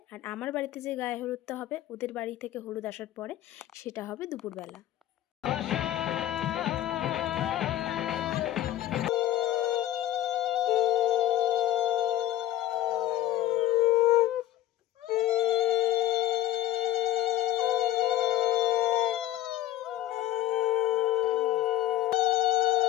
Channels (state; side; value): quieter; right; 13.6 dB